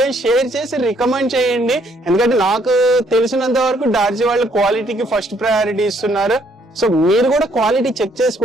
షేర్ చేసి రికమెండ్ చేయండి, ఎందుకంటే నాకు తెలిసినంత వరకు డార్జీ వాళ్ళు క్వాలిటీకి ఫస్ట్ ప్రయారిటీ ఇస్తున్నారు. సో మీరు కూడా క్వాలిటీ చెక్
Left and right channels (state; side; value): normal; both; correlation 0.67